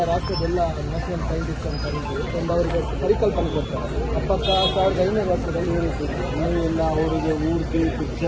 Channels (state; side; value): identical; both; correlation 1.00